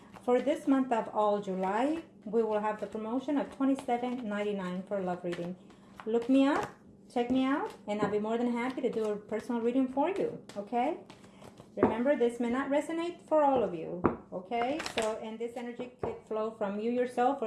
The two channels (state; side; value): identical; both; correlation 1.00